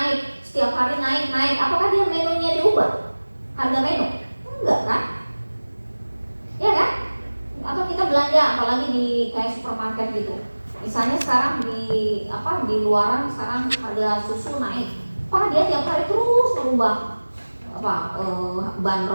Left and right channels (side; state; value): both; inverted; correlation -1.00